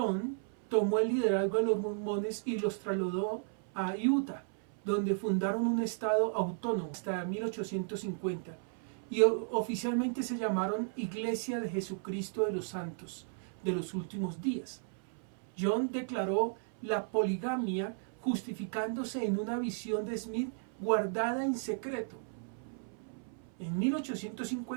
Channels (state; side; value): silent; left; 55 dB below the other